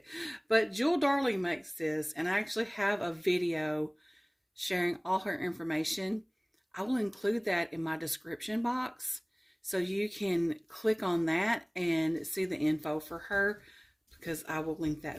But Jewel Darling makes this, and I actually have a video sharing all her information. I will include that in my description box, so you can click on that and see the info for her, because I will link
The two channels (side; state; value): both; identical; correlation 1.00